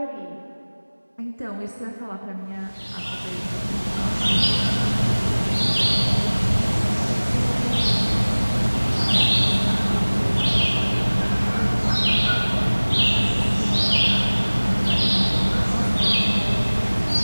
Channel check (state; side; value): inverted; both; correlation -1.00